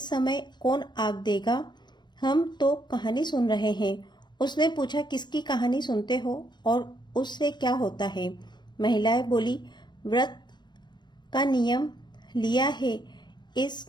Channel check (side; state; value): right; late; 0.21 ms